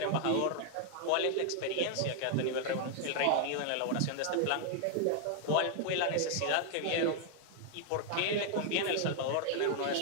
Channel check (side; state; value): both; different; correlation 0.00